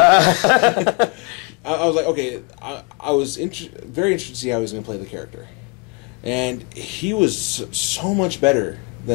I was like, okay. I was very interested to see how he was going to play the character, and he was so much better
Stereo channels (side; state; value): right; quieter; 31.5 dB